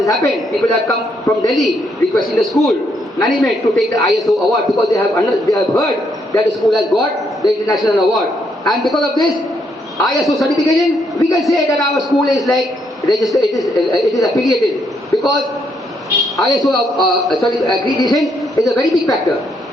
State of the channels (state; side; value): normal; both; correlation 0.74